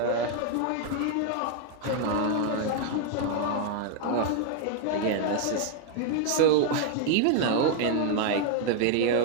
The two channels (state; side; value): different; both; correlation 0.00